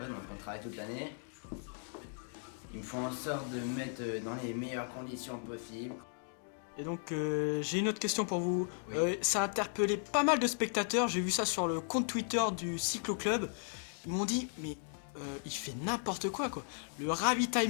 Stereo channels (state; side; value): silent; right; 54 dB below the other